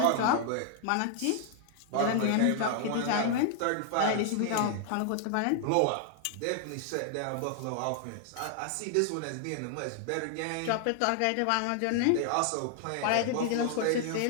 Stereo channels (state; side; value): different; both; correlation 0.00